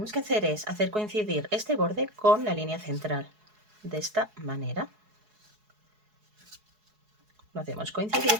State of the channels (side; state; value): left; late; 4.7 ms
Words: que hacer es hacer coincidir este borde con la línea central. De esta manera. Lo hacemos